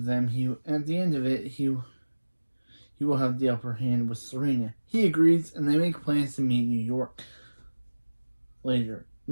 it, he will have the upper hand with Serena. He agrees, and they make plans to meet in New York later.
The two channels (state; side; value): inverted; both; correlation -1.00